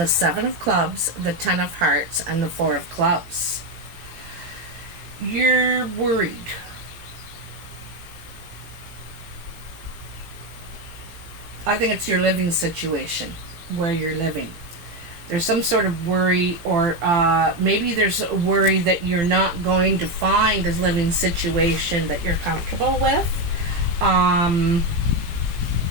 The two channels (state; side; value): late; left; 18 ms